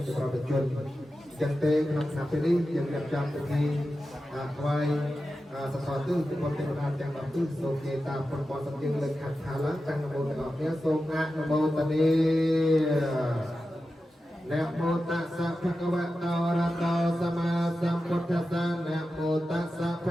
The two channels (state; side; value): normal; both; correlation 0.92